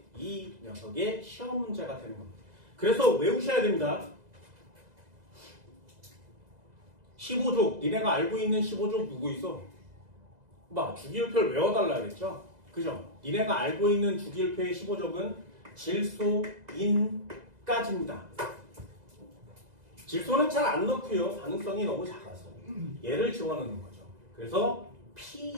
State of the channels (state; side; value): late; left; 2.0 ms